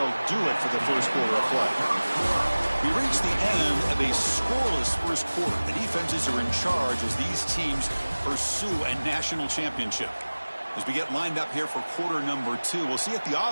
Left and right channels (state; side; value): inverted; both; correlation -1.00